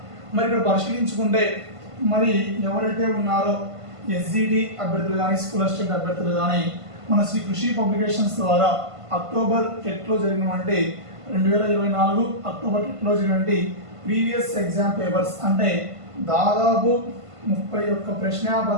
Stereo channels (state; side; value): late; left; 1.5 ms